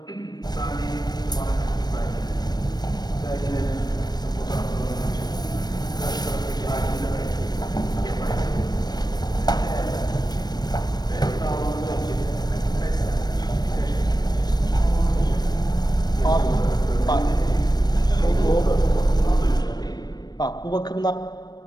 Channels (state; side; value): late; right; 0.19 ms